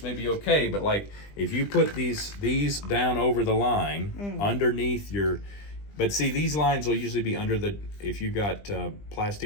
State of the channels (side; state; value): right; late; 20 ms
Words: may be okay, but like if you put these down over the line underneath your, but see, these lines will usually be under the, if you got